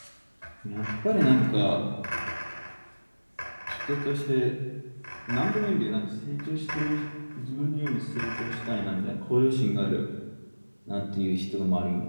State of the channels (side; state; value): both; inverted; correlation -1.00